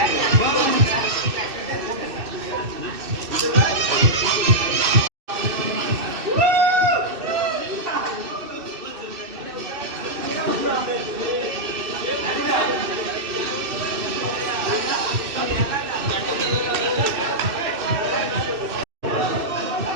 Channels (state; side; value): late; left; 2.7 ms